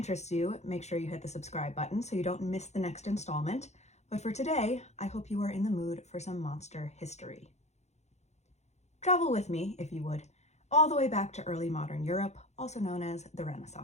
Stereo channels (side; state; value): right; late; 0.32 ms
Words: you, make sure you hit the subscribe button so you don't miss the next installment. But for today, I hope you are in the mood for some monster history. Travel with me, if you would, all the way back to early modern Europe, also known as the